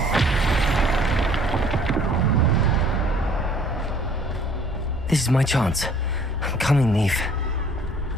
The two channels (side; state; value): both; normal; correlation 0.56